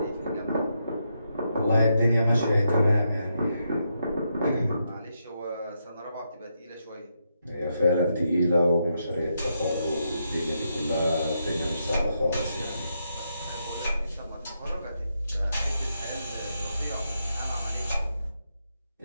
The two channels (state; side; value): inverted; both; correlation -0.81